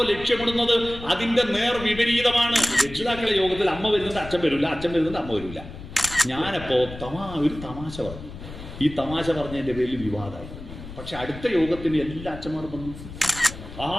ലക്ഷ്യമിടുന്നത് അതിന്റെ നേർ വിപരീതമാണ്. രക്ഷിതാക്കളെ യോഗത്തിൽ അമ്മ വരുന്നത് അച്ഛൻ വരില്ല, അച്ഛൻ വരുന്നത് അമ്മ വരില്ല. ഞാനപ്പോ ഒരു തമാശ പറഞ്ഞു. ഈ തമാശ പറഞ്ഞതിന്റെ പേരിൽ വിവാദമായി. പക്ഷെ അടുത്ത യോഗത്തിന് എല്ലാ അച്ഛന്മാരും വന്നു.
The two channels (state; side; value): noise; left; rumble, 13 dB below the sound